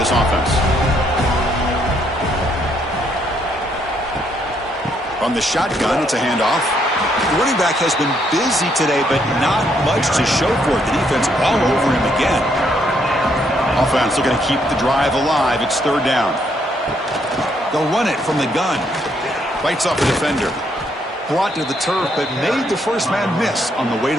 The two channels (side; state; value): both; normal; correlation 0.72